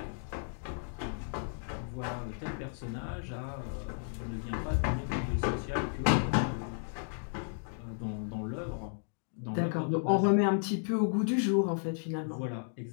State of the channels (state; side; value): silent; right; digital silence